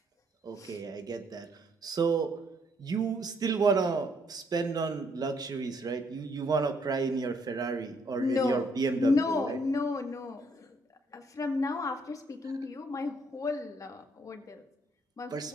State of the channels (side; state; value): both; normal; correlation 0.70